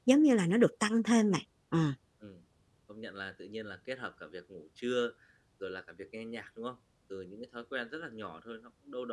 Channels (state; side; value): identical; both; correlation 1.00